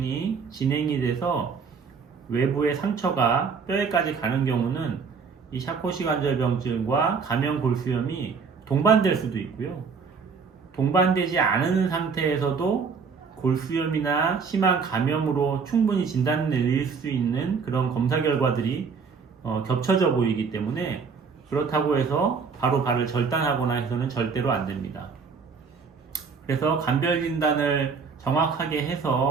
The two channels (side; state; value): left; quieter; 5.5 dB